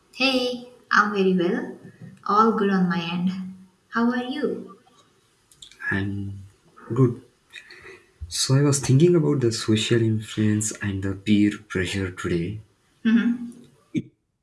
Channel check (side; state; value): both; identical; correlation 1.00